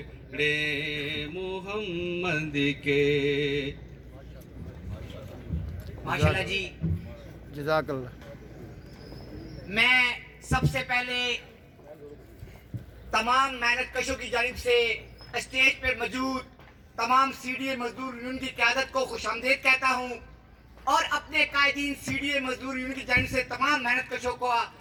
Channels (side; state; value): both; identical; correlation 1.00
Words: محمد کے. ماشاءاللہ جی. جزاک اللہ. میں سب سے پہلے تمام محنت کشوں کی جانب سے اسٹیج پر موجود تمام سی ڈی اے مزدور یونین کی قیادت کو خوش آمدید کہتا ہوں اور اپنے قائدین سی ڈی اے مزدور یونین کی جانب سے تمام محنت کشوں کو